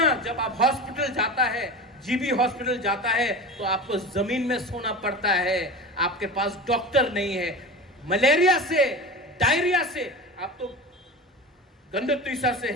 जब आप हॉस्पिटल जाता है, जीबी हॉस्पिटल जाता है तो आपको जमीन में सोना पड़ता है, आपके पास डॉक्टर नहीं है। मलेरिया से, डायरिया से, आप तो गंडतीसा से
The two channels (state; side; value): normal; both; correlation 0.30